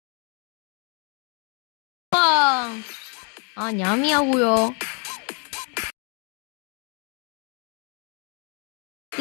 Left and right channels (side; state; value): right; quieter; 38.1 dB